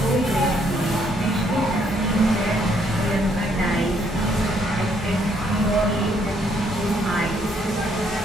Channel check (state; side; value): normal; both; correlation 0.69